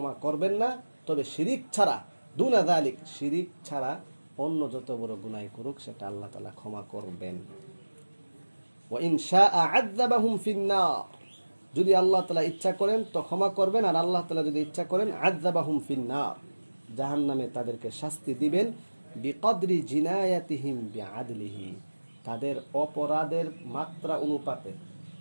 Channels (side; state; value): both; inverted; correlation -1.00